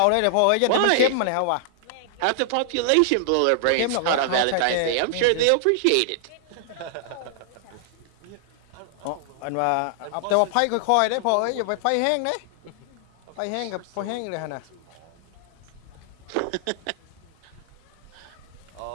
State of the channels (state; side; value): different; both; correlation -0.01